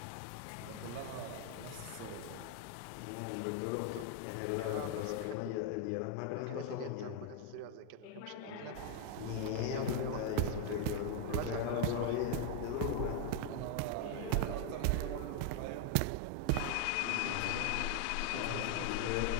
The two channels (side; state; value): both; different; correlation 0.00